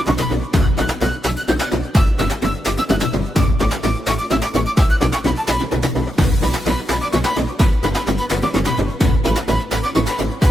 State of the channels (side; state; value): both; normal; correlation 0.86